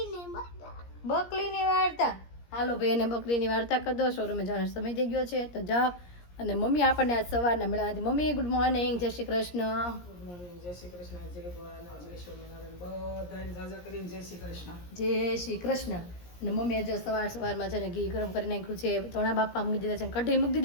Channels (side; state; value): right; late; 17 ms